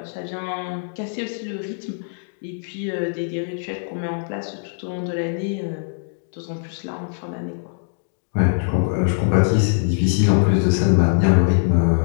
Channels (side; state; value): right; silent; digital silence